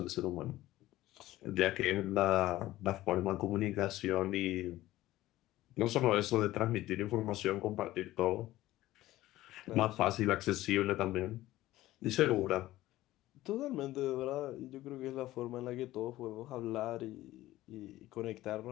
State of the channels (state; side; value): quieter; right; 15.9 dB